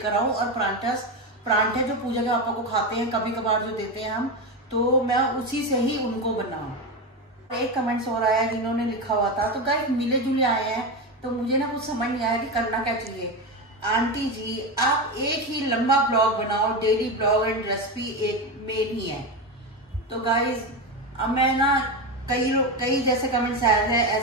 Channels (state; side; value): normal; both; correlation 0.16